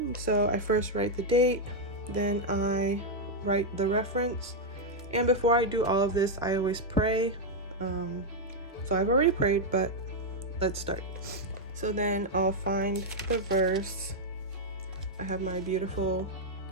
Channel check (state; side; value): normal; both; correlation -0.01